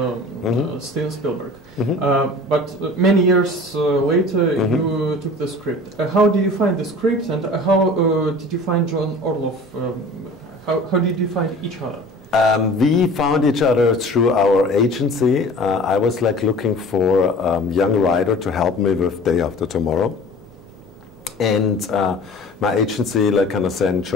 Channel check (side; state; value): both; normal; correlation 0.43